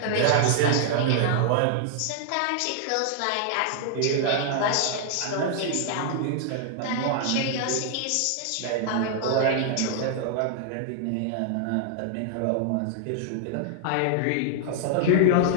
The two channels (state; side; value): different; both; correlation -0.01